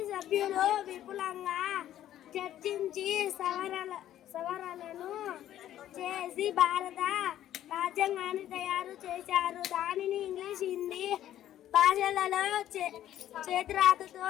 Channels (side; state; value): right; quieter; 12.1 dB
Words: సభ్యులు విపులంగా చర్చించి సవరణలను చేసి భారత రాజ్యాంగాన్ని తయారు చేశారు. దానిని ఇంగ్లీష్, హిందీ భాషలలో చేతిరాతతో